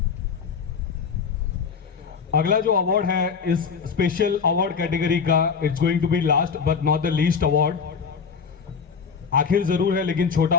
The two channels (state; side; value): quieter; right; 6.0 dB